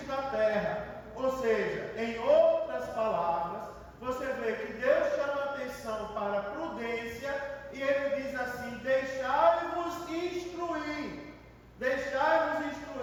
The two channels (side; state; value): both; identical; correlation 1.00